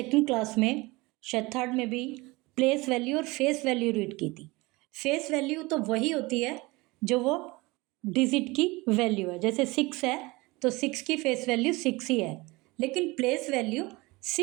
क्लास में, शायद थर्ड में भी प्लेस वैल्यू और फेस वैल्यू रीड की थी। फेस वैल्यू तो वही होती है जो वो डिजिट की वैल्यू है। जैसे 6 है तो 6 की फेस वैल्यू 6 ही है, लेकिन प्लेस वैल्यू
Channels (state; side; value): quieter; left; 23.1 dB